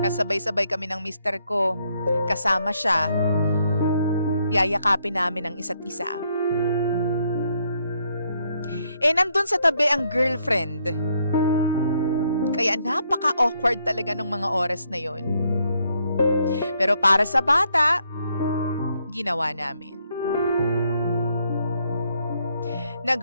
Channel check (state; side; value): inverted; both; correlation -0.73